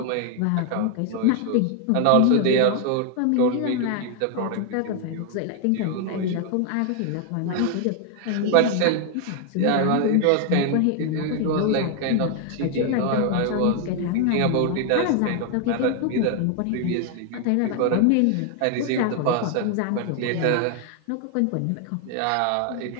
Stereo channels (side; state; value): both; different; correlation 0.00